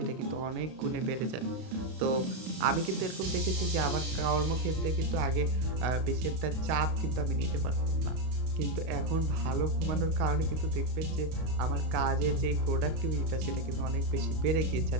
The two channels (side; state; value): left; late; 32 ms